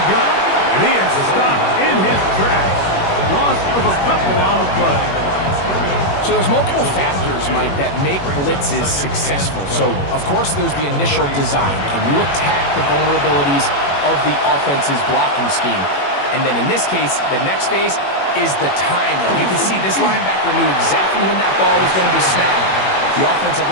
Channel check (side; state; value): right; late; 21 ms